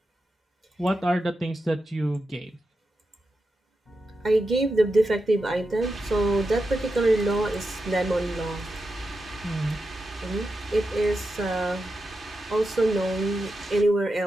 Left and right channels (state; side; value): normal; both; correlation 0.89